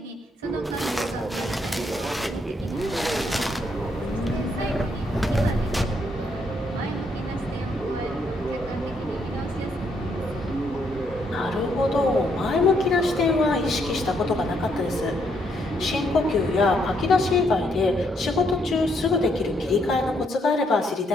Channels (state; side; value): normal; both; correlation 0.73